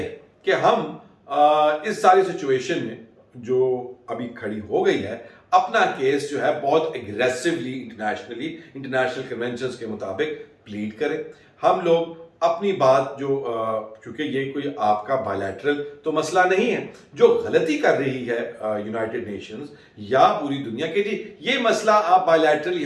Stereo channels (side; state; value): both; identical; correlation 1.00